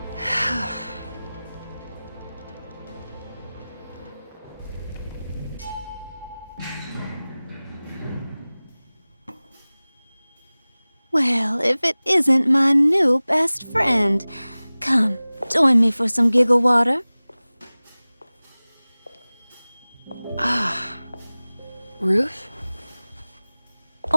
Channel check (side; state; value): both; inverted; correlation -0.99